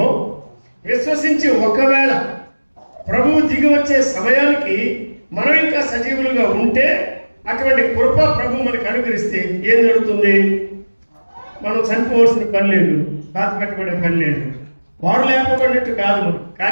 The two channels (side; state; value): both; inverted; correlation -1.00